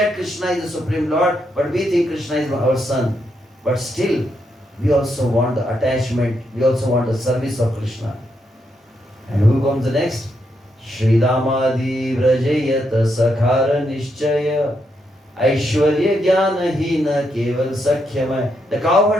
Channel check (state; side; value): normal; both; correlation 0.80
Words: Krishna is the Supreme Lord, but we think Krishna is our son. But still, we also want the attachment, we also want the service of Krishna. And who comes the next? Shri Damadi Vrajayat Sakhara Nishchaya Aishwarya Jnana Hina Keval Sakhyamay. The